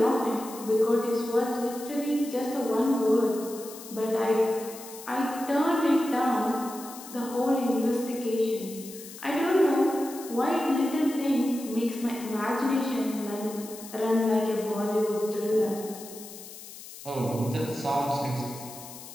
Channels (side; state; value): left; noise; hiss, 15 dB below the sound